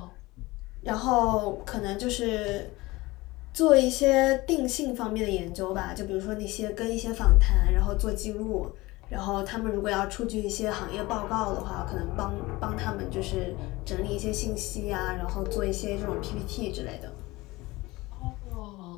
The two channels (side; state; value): right; quieter; 20.9 dB